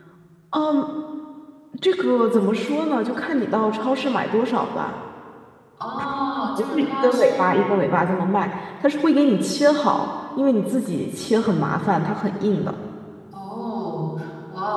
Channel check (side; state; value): both; identical; correlation 1.00